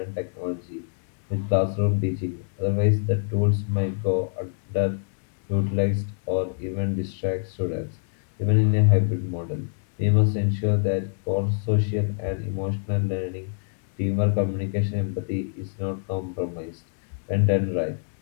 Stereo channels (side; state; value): right; silent; digital silence